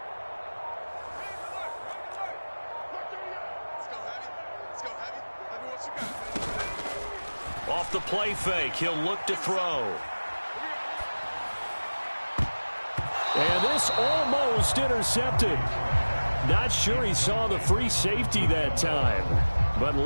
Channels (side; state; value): both; inverted; correlation -1.00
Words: Off the play fake, he'll look to throw. And this almost intercepted. Not sure he saw the free safety that time. But